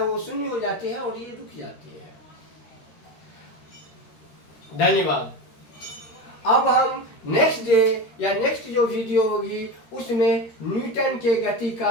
शून्य हो जाती है और ये रुक जाती है। धन्यवाद। अब हम नेक्स्ट डे या नेक्स्ट जो वीडियो होगी उसमें न्यूटन के गति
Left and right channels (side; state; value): right; late; 13 ms